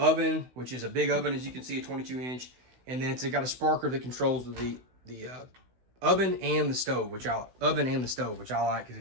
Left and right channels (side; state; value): left; late; 16 ms